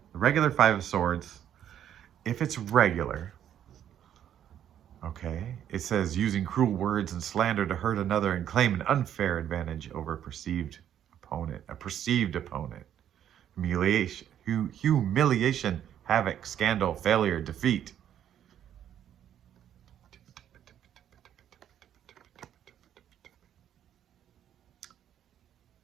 the regular 5 of Swords. If it's regular, okay, it says using cruel words and slander to hurt another and claim an unfair advantage over a perceived opponent, a perceived opponent. Humiliation, havoc, scandal, failure, defeat.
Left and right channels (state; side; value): quieter; left; 10.2 dB